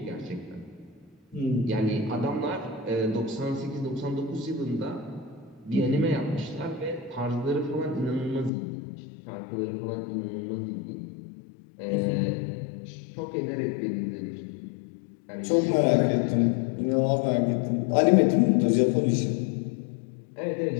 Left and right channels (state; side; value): drops out; right; at 8.5 s